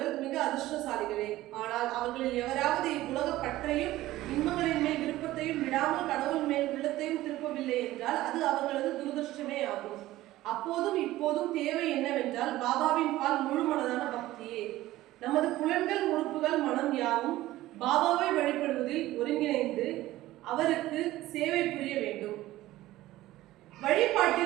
மிக அதிர்ஷ்டசாலிகளே. ஆனால் அவர்களில் எவராவது இவ்வுலக பற்றையும் இன்பங்களின் மேல் விருப்பத்தையும் விடாமல் கடவுள் மேல் உள்ளத்தையும் திருப்பவில்லை என்றால் அது அவர்களது துரதிருஷ்டமே ஆகும். அப்போதும் இப்போதும் தேவை என்னவென்றால் பாபாவின் பால் முழு மனதான பக்தியே. நமது புலன்கள், உறுப்புகள், மனம் யாவும் பாபாவை வழிபடுவதில் ஒருங்கிணைந்து அவருக்கு சேவை புரிய வேண்டும்.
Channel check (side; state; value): left; quieter; 16.2 dB